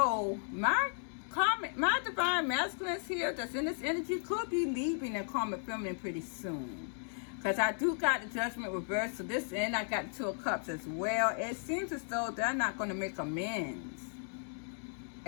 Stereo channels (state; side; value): silent; right; 54 dB below the other